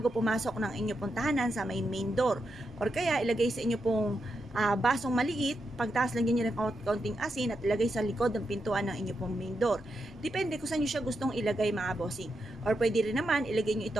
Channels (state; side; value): normal; both; correlation 0.85